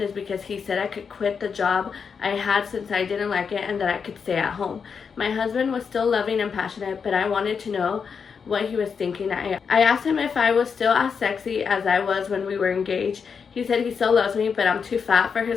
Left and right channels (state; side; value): quieter; right; 6.1 dB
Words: is because he said I could quit the job I had since I didn't like it and that I could stay at home. My husband was still loving and passionate, but I wanted to know what he was thinking. I asked him if I was still as sexy as I was when we were engaged. He said he still loves me, but I'm too fat for